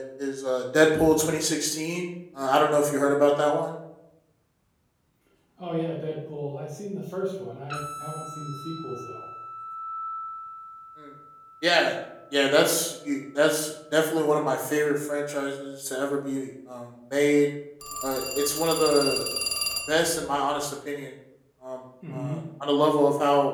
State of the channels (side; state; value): both; identical; correlation 1.00